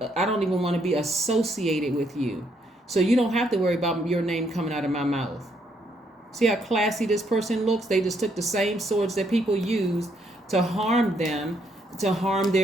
be associated with you. So you don't have to worry about your name coming out of my mouth. See how classy this person looks? They just took the same swords that people used to harm them, to harm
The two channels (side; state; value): both; normal; correlation 0.73